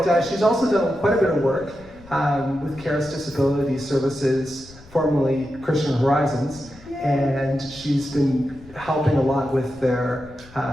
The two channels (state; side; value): noise; left; rumble, 22 dB below the sound